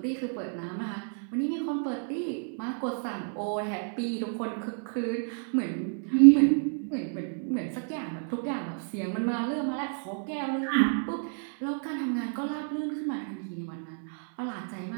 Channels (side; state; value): left; silent; 58 dB below the other